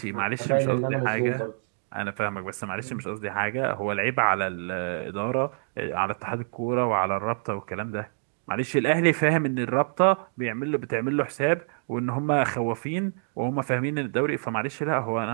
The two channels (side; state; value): left; silent; digital silence